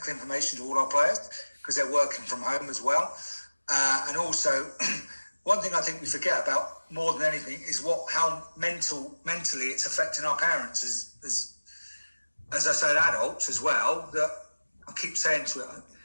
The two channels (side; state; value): both; inverted; correlation -1.00